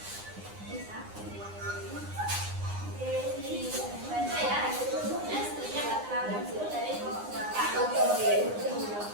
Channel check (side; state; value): left; late; 9.8 ms